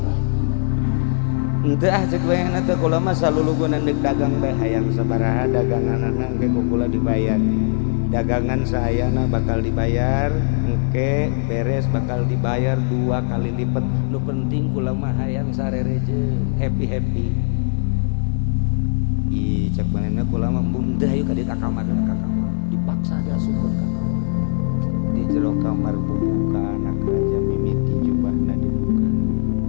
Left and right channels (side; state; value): right; silent; digital silence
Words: Henteu cek bayangna teh kula mah salulugunan deuk dagang teh hayang sabaraha daganganna engke kula dibayar. Dagangan sayana bakal dibayar, engke beres bakal dibayar 2 kali lipat. Nu penting kula mah hayang sarere jeung happy. Ih cek manehna kula mah mundah ayo ka dieu ka kamar dipaksa diasupkeun ka kamar. Di jero kamar buka anak raja mimiti jubahna dibuka.